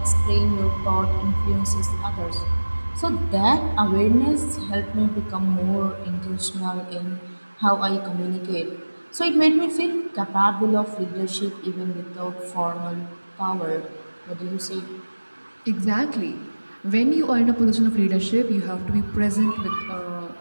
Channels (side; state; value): both; inverted; correlation -1.00